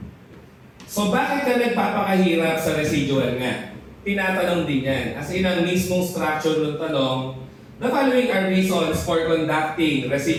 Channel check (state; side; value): identical; both; correlation 1.00